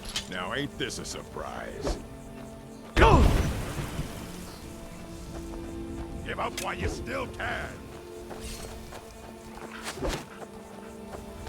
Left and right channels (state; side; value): identical; both; correlation 1.00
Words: Now ain't this a surprise? Give up while you still can!